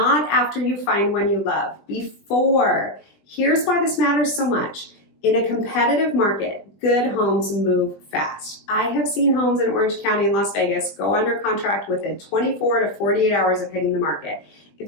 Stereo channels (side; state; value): right; late; 20 ms